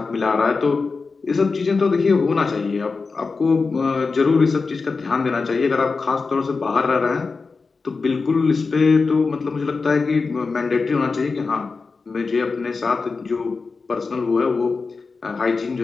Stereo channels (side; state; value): right; quieter; 4.4 dB